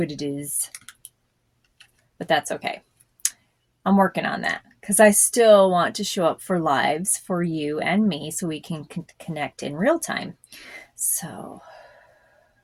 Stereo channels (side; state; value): both; identical; correlation 1.00